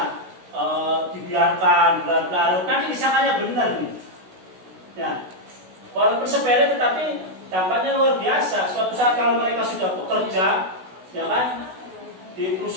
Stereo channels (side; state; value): left; late; 16 ms